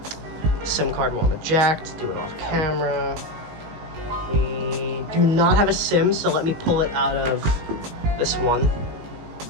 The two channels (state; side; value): late; left; 19 ms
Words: SIM card will eject, do it off camera. We do not have a SIM, so let me pull it out of this one.